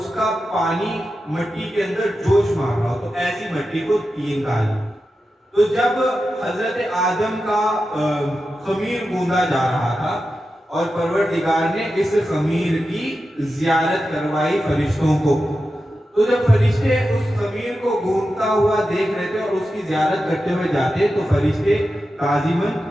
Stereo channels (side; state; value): both; normal; correlation 0.91